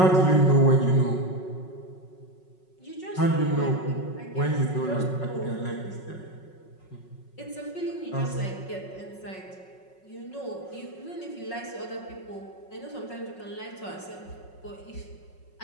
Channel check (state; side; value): late; right; 5.4 ms